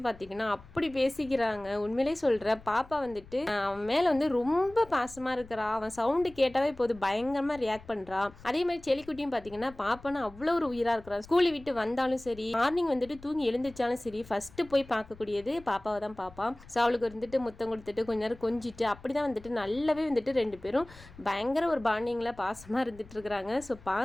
பார்த்தீங்கன்னா அப்படி பேசிக்கிறாங்க. உண்மையிலே சொல்கிற பாப்பா வந்துட்டு அவன் மேலே வந்து ரொம்ப பாசமாக இருக்கிறா. அவன் சவுண்டு கேட்டாவே இப்போது பயங்கரமாக ரியாக்ட் பண்ணுறான். அதே மாதிரி செல்லிக்குட்டியும் பார்த்தீங்கன்னா பாப்பான்னு அவ்வளோ ஒரு உயிரா இருக்கிறான். ஸ்கூலை விட்டு வந்தாலும் சரி, மார்னிங் வந்துட்டு தூங்கி எழுந்திரிச்சாலும் சரி, ஃபர்ஸ்ட் போய் பார்க்கக்கூடியது பாப்பாவை தான் பார்ப்பான். ஸோ அவளுக்கு வந்துட்டு முத்தம் கொடுத்துட்டு கொஞ்ச நேரம் கொஞ்சிட்டு அப்படிதான் வந்துட்டு நல்லாவே வந்துட்டு ரெண்டு பேரும் பயங்கர ஒரு பாண்டிங்ல பாசமா இருந்துட்டு இருக்கிறாங்க. ஸோ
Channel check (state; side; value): noise; left; rumble, 21 dB below the sound